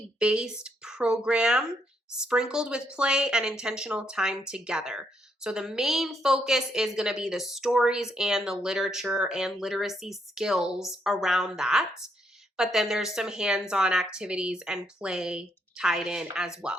program sprinkled with play and intentional time together. So the main focus is going to be the stories and the literature and literacy skills around that. But then there's some hands-on activities and play tied in as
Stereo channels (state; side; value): normal; both; correlation 0.75